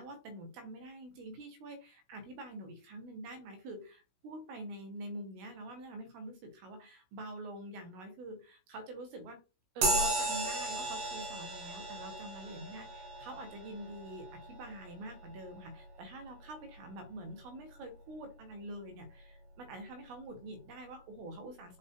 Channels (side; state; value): left; late; 16 ms